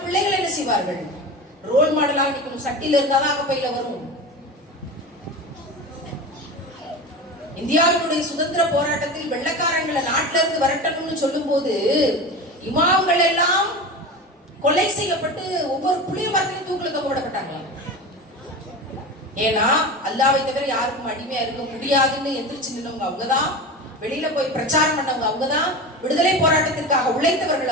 பிள்ளைகள் என்ன செய்வார்கள்? ரோல் மாடலாக நிக்கணும். சட்டியில இருந்தாதான் அகப்பையில வரும். இந்தியாவினுடைய சுதந்திர போராட்டத்தில் வெள்ளக்காரங்களை நாட்டில இருந்து வரட்டணும்னு சொல்லும் போது இமாம்கள் எல்லாம் கொலை செய்யப்பட்டு ஒவ்வொரு புளிய மரத்திலும் தூக்கில தொங்கப்பட்டாங்களாம். ஏன்னா அல்லாஹ்வை தவிர யாருக்கும் அடிமையா இருக்க முடியாதுன்னு எந்திரிச்சு நின்னவங்க அவங்கதான், வெளியில போய் பிரச்சாரம் பண்ணவங்க அவங்கதான், விடுதலை போராட்டத்திற்காக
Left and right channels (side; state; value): both; normal; correlation 0.28